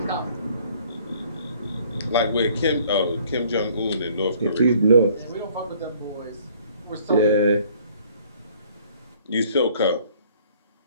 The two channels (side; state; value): both; inverted; correlation -0.58